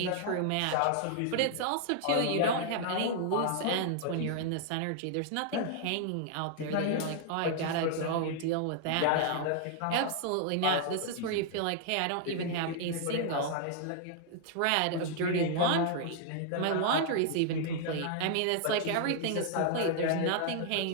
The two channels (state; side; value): different; both; correlation -0.01